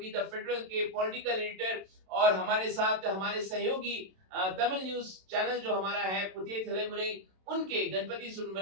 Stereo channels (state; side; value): late; left; 27 ms